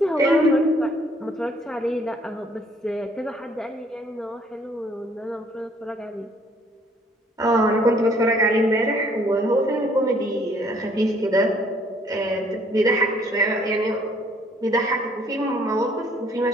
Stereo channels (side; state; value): both; normal; correlation 0.62